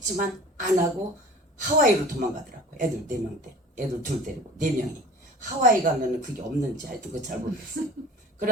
안 하고 하와이로 도망가더라고. 애들 4명 때, 애들 둘 데리고 4명이 하와이 가면은 그게 없는지 하여튼 그거 잘 모르겠어요.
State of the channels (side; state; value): both; normal; correlation 0.41